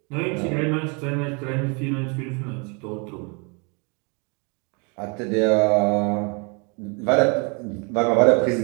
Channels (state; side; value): quieter; left; 32.9 dB